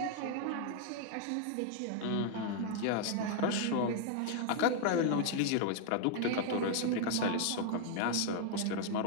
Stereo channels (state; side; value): different; both; correlation 0.00